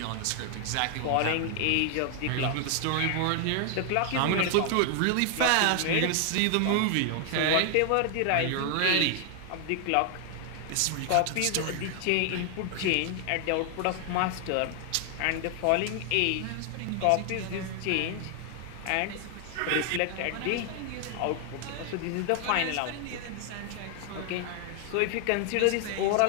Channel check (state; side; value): different; both; correlation 0.00